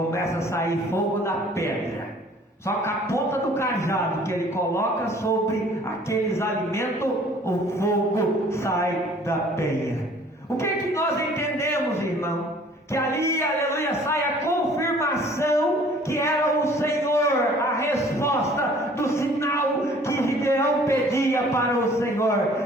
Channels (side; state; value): both; normal; correlation 0.53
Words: a sair fogo da pedra. Só que a ponta do cajado que ele coloca sobre aqueles alimentos, o fogo sai da penha. O que é que nós entendemos, irmão? Que ali, aleluia, sai a confirmação que era o Senhor, a resposta do sinal que Gideão pedia para o